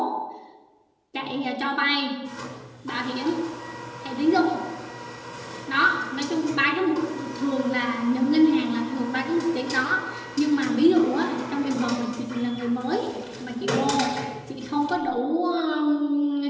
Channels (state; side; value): identical; both; correlation 1.00